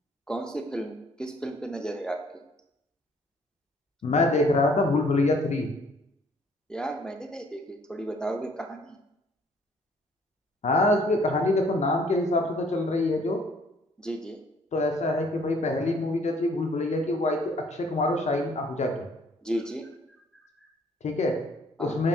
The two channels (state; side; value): normal; both; correlation 0.61